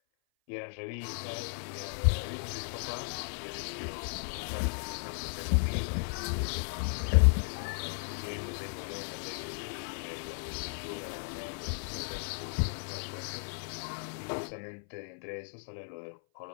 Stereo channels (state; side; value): silent; right; 54 dB below the other